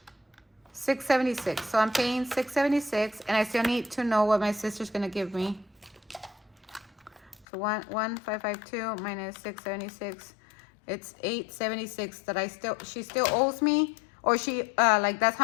676. So I'm paying 676, and I still need to know what my sister's gonna give me. So 1,552 minus 676. It's 876 that she still owes me, Or she, like that's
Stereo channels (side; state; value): right; drops out; at 7.5 s